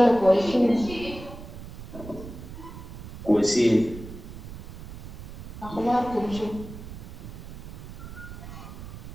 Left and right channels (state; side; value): noise; right; rumble, 12 dB below the sound